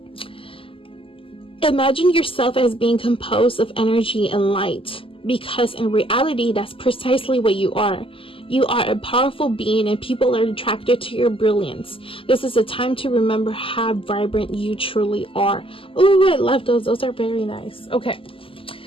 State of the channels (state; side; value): late; right; 0.26 ms